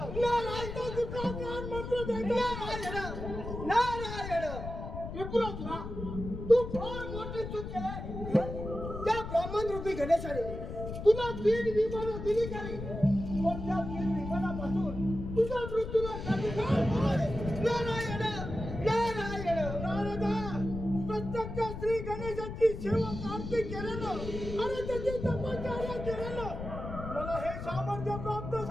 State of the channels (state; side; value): noise; left; rumble, 7 dB below the sound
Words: नाही तर कुठला कान मंत्र द्यायचा? नारायण त्रिपुरासुरा, तू फार मोठी चूक केली. त्या ब्राह्मण रूपी गणेशाने तुला 3 विमानं दिली काही, पण त्या 3 विमानापासून तुझ्या मृत्यूला नारायण नारायण नारदा, प्रत्यक्ष श्री गणेशाची सेवा आरती केल्यानं आणि त्याची तपश्चर्या केल्यानं मला हे सामर्थ्य प्राप्त